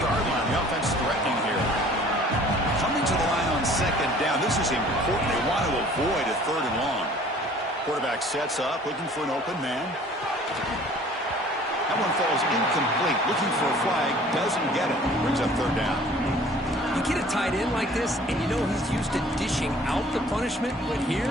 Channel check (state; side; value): normal; both; correlation 0.51